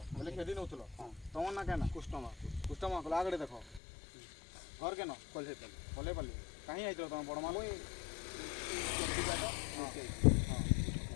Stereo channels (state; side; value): drops out; right; at 3.8 s